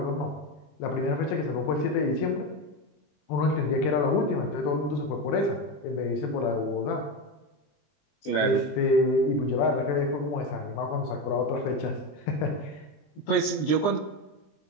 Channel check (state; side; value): late; right; 20 ms